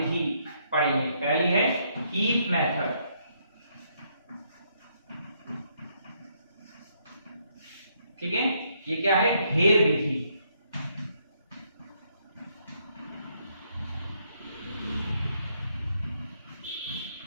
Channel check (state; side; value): inverted; both; correlation -0.73